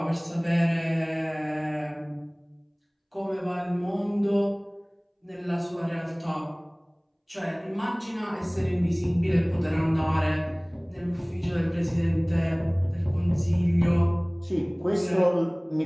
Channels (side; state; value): both; identical; correlation 1.00